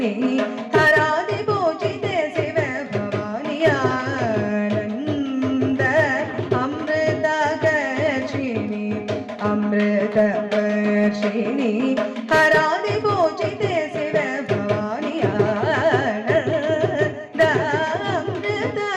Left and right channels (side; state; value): both; identical; correlation 1.00